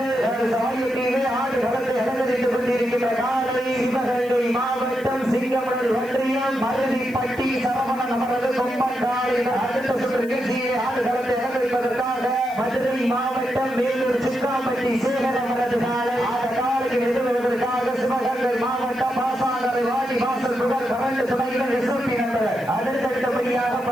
சாயத்திலே ஆடு வளர்ந்து அலங்கரித்துக் கொண்டிருக்கின்ற காலை சிவகங்கை மாவட்டம் சிங்கமணல் ஒன்றியம் மருதிப்பட்டி சரவணன் அவரது கொம்பன் காலை அடுத்த சுற்று நிகழ்ச்சியை ஆடு வளர்ந்து அலங்கரிப்பதற்காக மதுரை மாவட்டம் வேலூர் சிக்காம்பட்டி சேகர் அவரது காலை அந்த காலையில் எதிர்வதற்காக சிவகங்கை மாவட்டம் பாசாங்கரை வாடி வாசல் புகழ் கரண்டு துணைகள் எஸ்எம்பி நண்பர் அடுத்தடுத்தபடியாக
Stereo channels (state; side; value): noise; right; hiss, 23 dB below the sound